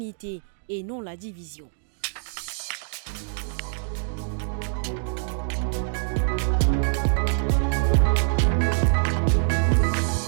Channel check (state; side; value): silent; left; digital silence